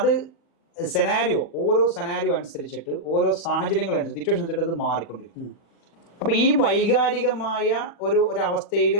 ഓരോ സെനാരിയോ അനുസരിച്ചിട്ട്, ഓരോ സാഹചര്യങ്ങൾ അനുസരിച്ച്, സിറ്റുവേഷൻ അനുസരിച്ചിട്ട് അത് മാറിക്കൊണ്ടിരിക്കും. അപ്പൊ ഈ വൈകാരികമായ ഒരു അവസ്ഥയിൽ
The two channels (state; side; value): late; right; 40 ms